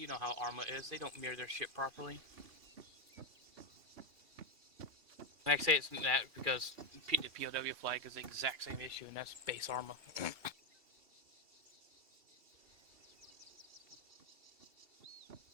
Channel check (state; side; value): late; left; 2.7 ms